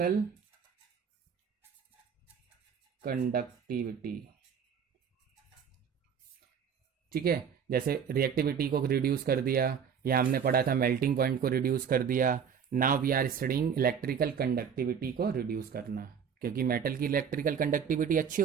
conductivity. ठीक है, जैसे रिएक्टिविटी को रिड्यूस कर दिया, या हमने पढ़ा था मेल्टिंग पॉइंट को रिड्यूस कर दिया. Now we are studying electrical conductivity को रिड्यूस करना, क्योंकि मेटल की इलेक्ट्रिकल कंडक्टिविटी अच्छी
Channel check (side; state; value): left; quieter; 7.2 dB